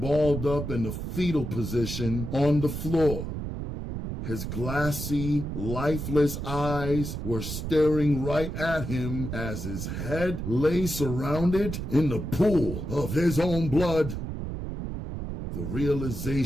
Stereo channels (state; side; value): noise; right; rumble, 5 dB below the sound